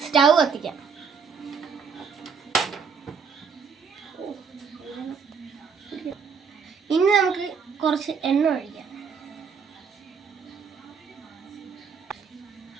സ്റ്റൗ കത്തിക്കാം. ഇനി നമുക്ക് കുറച്ച് എണ്ണ ഒഴിക്കാം.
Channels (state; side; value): quieter; left; 6.0 dB